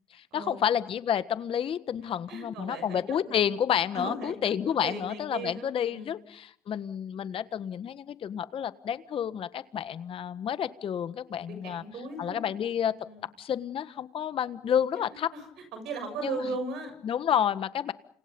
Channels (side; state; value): right; quieter; 7.4 dB